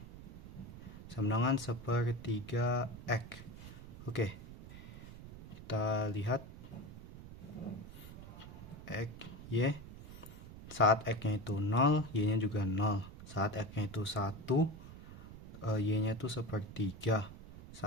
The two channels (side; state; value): right; noise; rumble, 14 dB below the sound